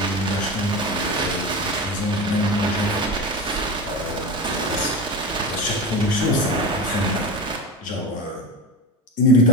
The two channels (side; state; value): both; normal; correlation 0.26